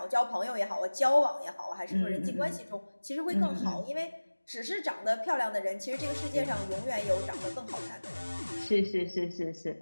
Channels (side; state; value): both; inverted; correlation -1.00